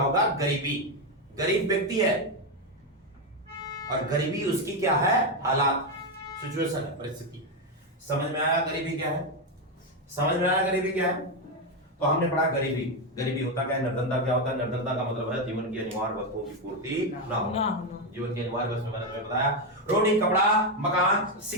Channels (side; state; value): both; normal; correlation 0.07